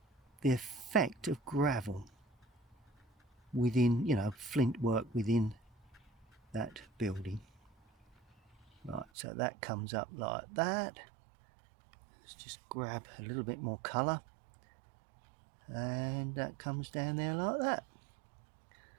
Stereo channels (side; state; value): left; drops out; at 9.1 s